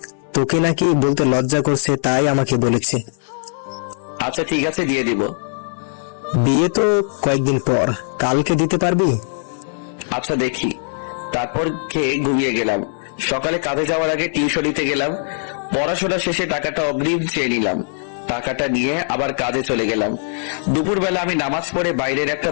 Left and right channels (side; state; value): right; silent; 66 dB below the other